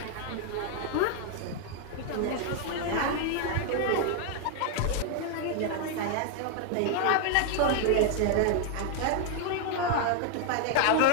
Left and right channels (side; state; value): both; different; correlation 0.00